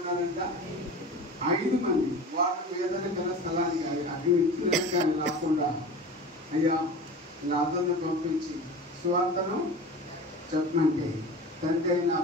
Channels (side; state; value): both; normal; correlation 0.35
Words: 5 మంది. వాళ్ళు ఏదైనా గల స్థలానికి అటు ఇచ్చిన కానీ రాకుండా, అయ్యా లాజరును పంపించి సువార్తను చెప్పమంటే, తండ్రి అయిన